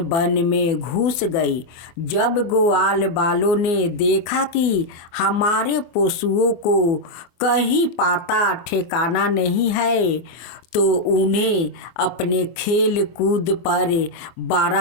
वन में घुस गई। जब ग्वाल वालों ने देखा कि हमारे पशुओं को कहीं पता ठिकाना नहीं है, तो उन्हें अपने खेल कूद पर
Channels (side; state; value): right; late; 24 ms